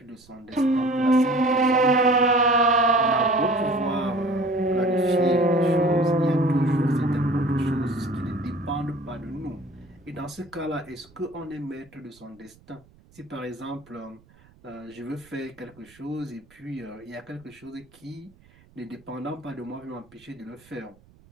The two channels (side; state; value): right; noise; rumble, 28 dB below the sound